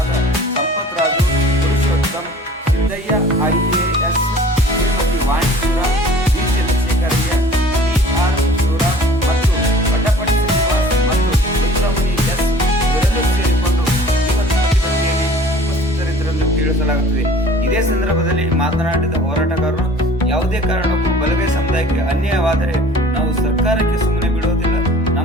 Sampath Raju, Purushottam, Siddaiah, IAS, Shrimati Vanishwara, V. Chandrashekharaiah, PR Shivram ಮತ್ತು ವಡ್ಡಪಟ್ಟಿ ಶ್ರೀನಿವಾಸ್ ಮತ್ತು ರುದ್ರಮುನಿ ಎಸ್ ಇವರೆಲ್ಲರೂ ಸೇರಿಕೊಂಡು ಪ್ರತಿಭಟನೆಯಲ್ಲಿ ಉಪಸ್ಥಿತರಿದ್ದರೆಂದು ತಿಳಿಸಲಾಗುತ್ತದೆ. ಇದೇ ಸಂದರ್ಭದಲ್ಲಿ ಮಾತನಾಡಿದ ಹೋರಾಟಗಾರರು, ಯಾವುದೇ ಕಾರಣಕ್ಕೂ ಬಲಗೈ ಸಮುದಾಯಕ್ಕೆ ಅನ್ಯಾಯವಾದರೆ ನಾವು ಸರ್ಕಾರಕ್ಕೆ ಸುಮ್ಮನೆ ಬಿಡುವುದಿಲ್ಲ,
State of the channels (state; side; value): normal; both; correlation 0.48